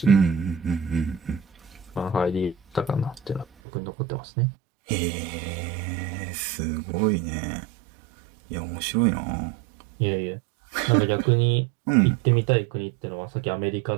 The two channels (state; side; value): drops out; left; at 3.5 s